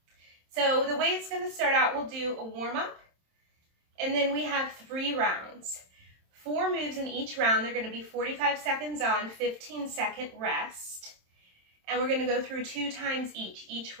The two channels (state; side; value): late; left; 27 ms